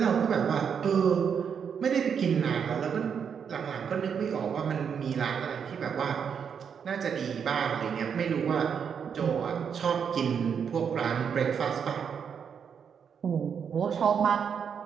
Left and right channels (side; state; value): left; quieter; 7.2 dB